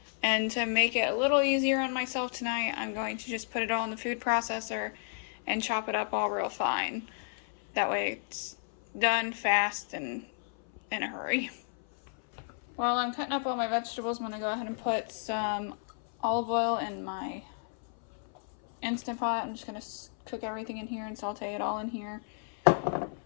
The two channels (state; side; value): silent; right; 57 dB below the other